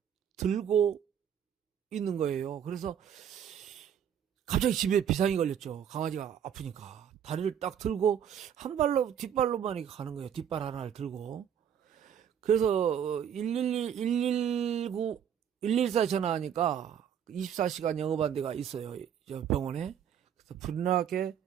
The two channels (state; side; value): quieter; left; 8.9 dB